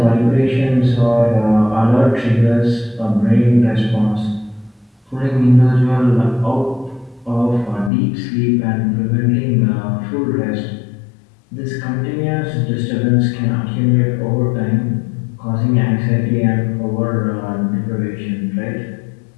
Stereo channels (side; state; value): right; drops out; at 7.9 s